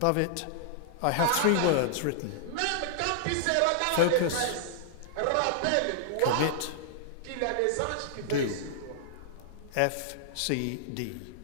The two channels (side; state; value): both; different; correlation -0.01